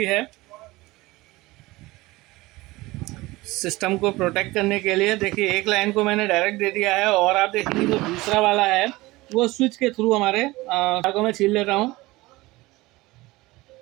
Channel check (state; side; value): quieter; left; 20.4 dB